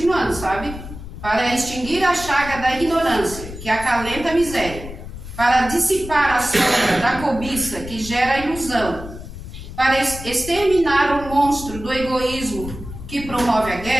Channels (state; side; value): noise; left; rumble, 11 dB below the sound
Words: sabe? Para extinguir a chaga da ignorância, que acalenta a miséria, para dissipar a sombra da cobiça, que gera ilusão, para exterminar o monstro do egoísmo, que promove a